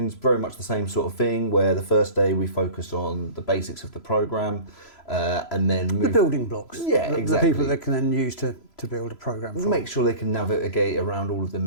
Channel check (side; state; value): right; late; 3.0 ms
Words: is very much the same sort of thing, where the first day we focus on the basics of the program and then move... The building blocks. Yeah, exactly. The people that can then use to build a program from. Make sure they can navigate around all of the